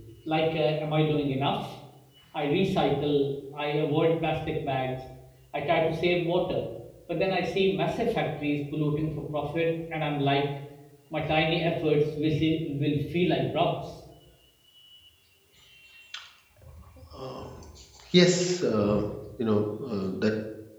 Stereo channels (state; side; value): identical; both; correlation 1.00